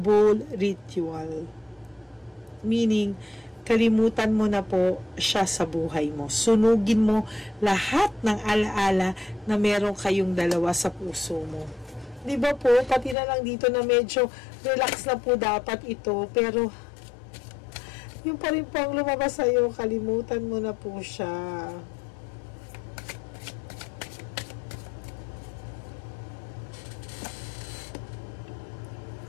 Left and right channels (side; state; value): right; drops out; at 13.2 s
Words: ritual. Meaning, kalimutan mo na po siya sa buhay mo. Sunugin mo lahat ng alaala na meron kayong dalawa sa puso mo. Diba po, pati na lang dito na medyo relax na po dapat ito, pero yung pa rin po ang lumabas sa'yo, kalimutan mo na po siya.